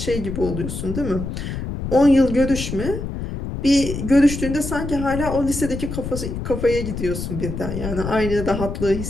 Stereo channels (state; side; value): noise; left; rumble, 6 dB below the sound